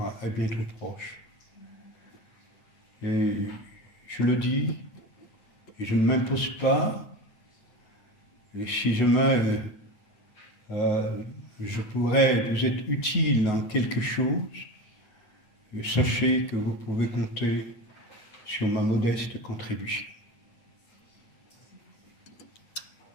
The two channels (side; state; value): right; late; 9.5 ms